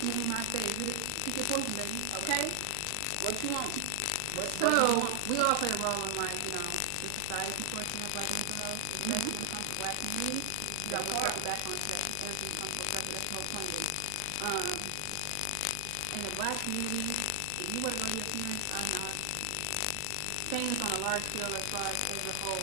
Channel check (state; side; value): different; both; correlation 0.00